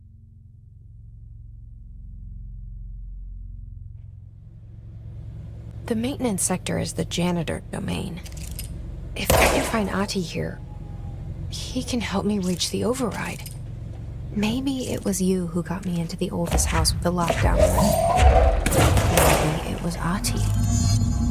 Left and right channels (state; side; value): identical; both; correlation 1.00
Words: The maintenance sector is the janitor domain. If I can find Ahti here, he can help me reach the override. Maybe it was you who got me into the oldest house with the lockdown room. Maybe it was Ahti.